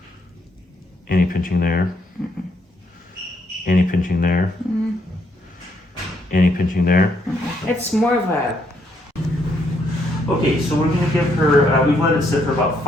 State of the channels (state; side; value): normal; both; correlation 0.73